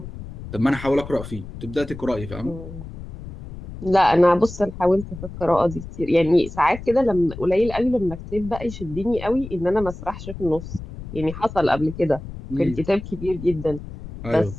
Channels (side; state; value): left; noise; rumble, 12 dB below the sound